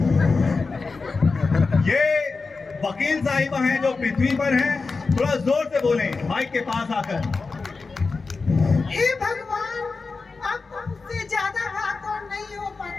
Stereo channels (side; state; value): right; quieter; 4.2 dB